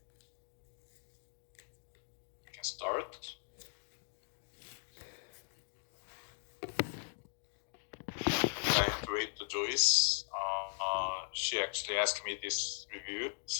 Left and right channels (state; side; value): silent; right; digital silence